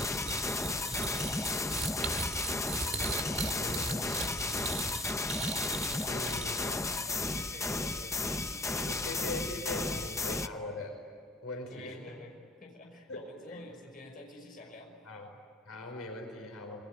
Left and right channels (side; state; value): both; normal; correlation 0.49